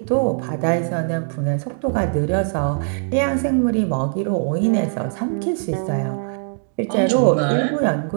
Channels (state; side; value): silent; left; digital silence